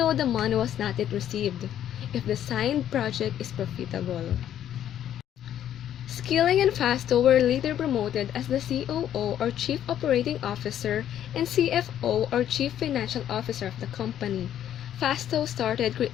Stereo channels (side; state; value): right; quieter; 10.8 dB